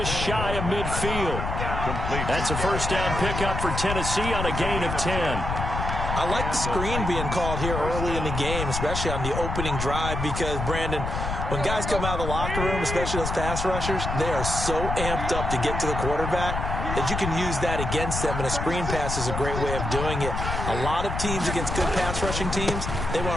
shy of midfield. That's a first down pickup for Tennessee on a gain of 10. I like the screen being called here early in the game, especially on the opening drive, because, Brandon, when guys come out of the locker room, especially those pass rushers, they are so amped up to get to the quarterback that you can use that against them, and a screen pass is a great way of doing it. A lot of teams against good pass rushing teams, they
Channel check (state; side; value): noise; left; rumble, 3 dB below the sound